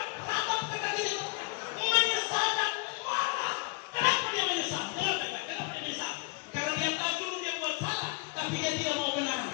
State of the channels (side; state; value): right; quieter; 24.8 dB